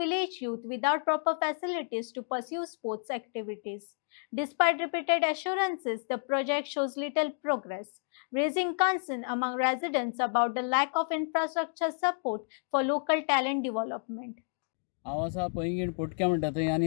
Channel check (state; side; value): silent; right; digital silence